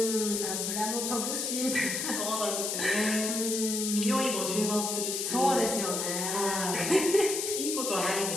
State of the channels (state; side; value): noise; left; hiss, 1 dB below the sound